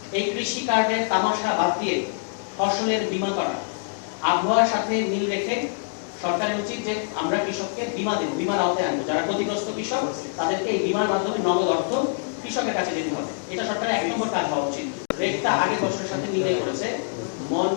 এই কৃষি কার্ডের তামাশা বাদ দিয়ে ফসলের বীমা করা। আবহাওয়ার সাথে মিল রেখে সরকারের উচিত যে আমরা কৃষককে বীমা দেব, বীমার আওতায় আনবো। যারা ক্ষতিগ্রস্ত কৃষক তাদেরকে এই বীমার মাধ্যমে নগদ অর্থ কৃষকের কাছে যেতে হবে। এটা সরকারের 1 নম্বর কাজ হওয়া উচিত। রেটটা আগের বছরের সাথে মিলিয়ে করেছে,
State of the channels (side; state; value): right; silent; digital silence